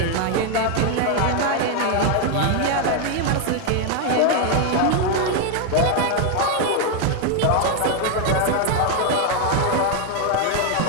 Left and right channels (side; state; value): both; different; correlation 0.01